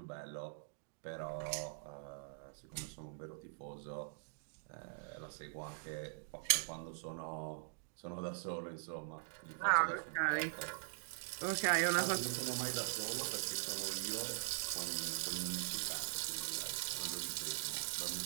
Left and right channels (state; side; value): silent; left; digital silence